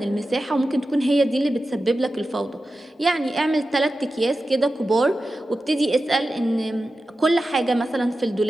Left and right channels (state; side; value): normal; both; correlation 0.93